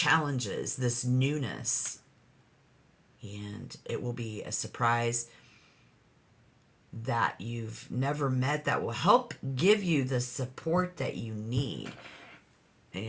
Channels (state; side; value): identical; both; correlation 1.00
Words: this newness. And it will be a surprise that you've never met that will help give you the support that you need. And